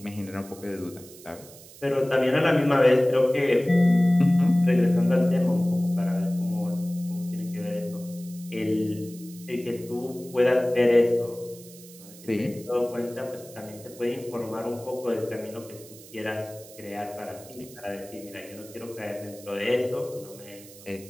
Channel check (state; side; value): noise; right; hiss, 19 dB below the sound